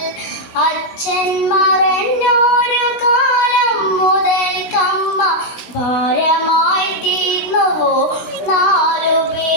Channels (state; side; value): late; right; 16 ms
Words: അച്ഛൻ മറഞ്ഞൊരു കാലം മുതൽക്കമ്മ ഭാരമായി തീർന്നുവോ 4